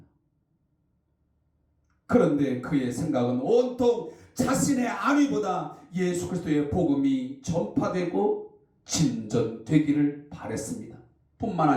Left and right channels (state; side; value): identical; both; correlation 1.00